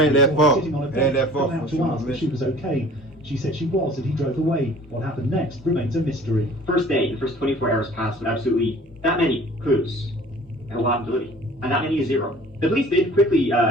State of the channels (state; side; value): normal; both; correlation 0.49